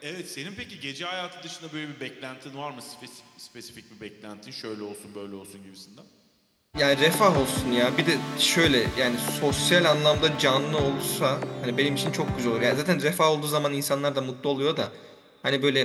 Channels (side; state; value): both; identical; correlation 1.00